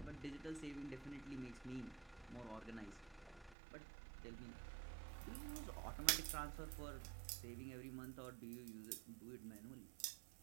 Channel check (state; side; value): drops out; left; at 3.6 s